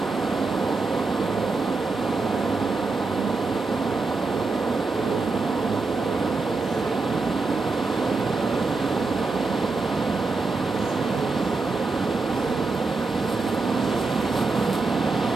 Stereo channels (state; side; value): quieter; left; 3.9 dB